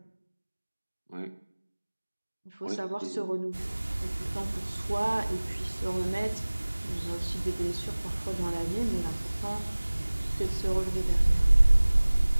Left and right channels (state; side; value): inverted; both; correlation -1.00